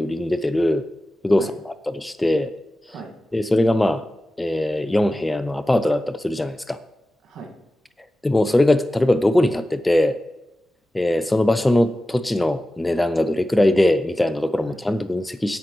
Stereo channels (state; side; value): normal; both; correlation 0.94